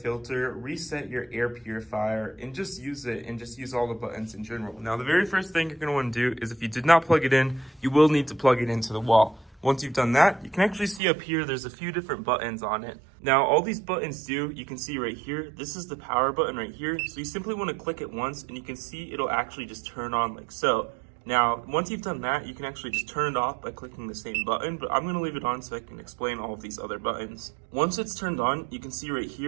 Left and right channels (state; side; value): drops out; left; at 11.0 s